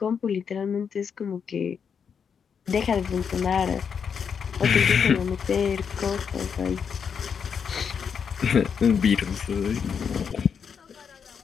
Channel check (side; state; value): right; quieter; 6.8 dB